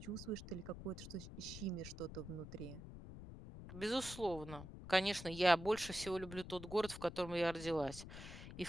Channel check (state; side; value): noise; left; rumble, 11 dB below the sound